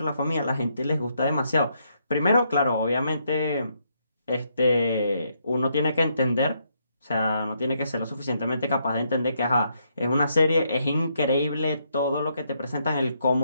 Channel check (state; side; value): inverted; both; correlation -0.76